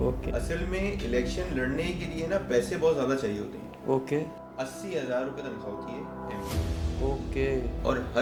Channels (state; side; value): identical; both; correlation 1.00